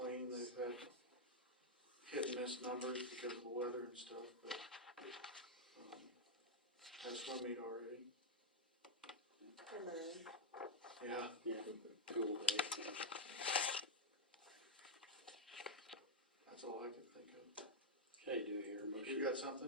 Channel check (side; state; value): both; normal; correlation -0.03